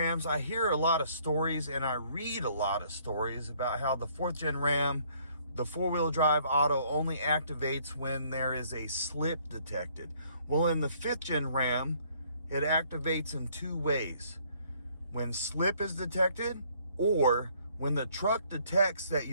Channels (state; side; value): inverted; both; correlation -0.63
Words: I hear a lot of stories and I read a lot of stories about how the 4th gen Ram, the four-wheel drive auto, only activates when there is a slip detected. Well, in the 5th gen Ram, it activates in two ways: when slip is detected, or when the truck detects that